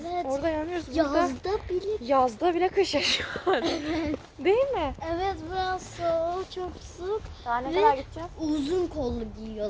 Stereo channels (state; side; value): identical; both; correlation 1.00